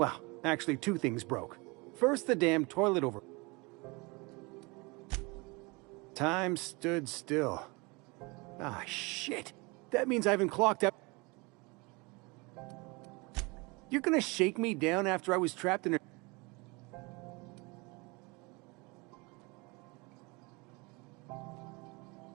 actually 2 things broke. First, the damn toilet over... Time stood still. Ah, shit. That means I haven't clocked up. You're gonna shake me down after I was trapped in a...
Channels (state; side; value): quieter; left; 26.9 dB